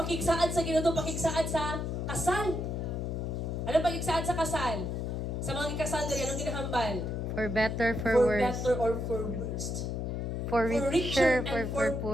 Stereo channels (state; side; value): noise; left; hum, 2 dB below the sound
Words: sa Ginoo, pakigsaad sa kasal. Ano pakigsaad sa kasal? Sa mga kasal diri anong ginahambal? For better, for worse. better or for worst. For richer richer, and for for